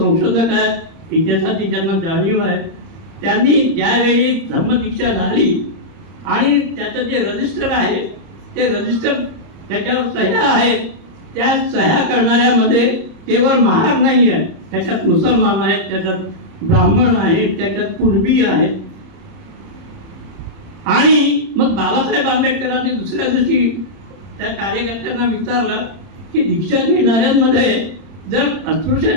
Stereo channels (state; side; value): late; left; 30 ms